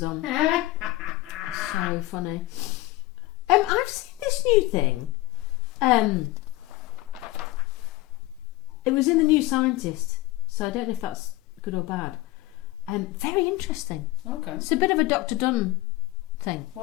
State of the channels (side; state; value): right; quieter; 19.1 dB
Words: on. So funny. I've seen this new thing. It was in the New Scientist, so I don't know if that's good or bad. Very interesting. Okay. It's a bit of a Dr. Dunn thing.